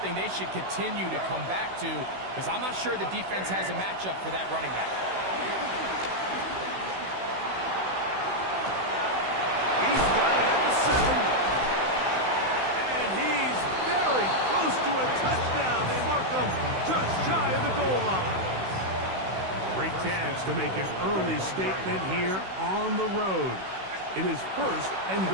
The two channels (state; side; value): late; left; 16 ms